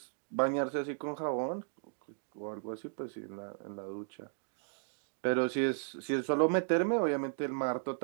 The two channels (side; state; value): left; silent; digital silence